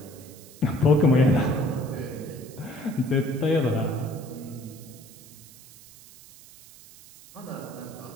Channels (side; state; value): right; noise; hiss, 21 dB below the sound